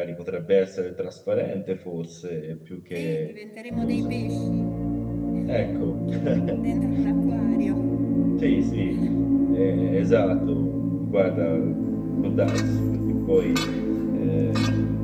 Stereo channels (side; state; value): both; identical; correlation 1.00